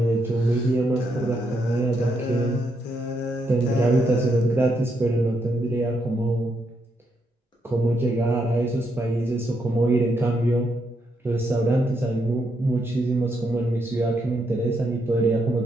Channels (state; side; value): normal; both; correlation 0.78